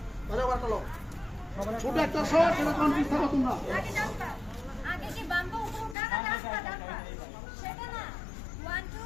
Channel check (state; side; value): drops out; right; at 6.0 s